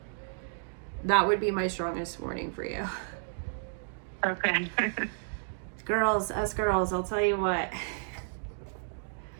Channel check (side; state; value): left; silent; digital silence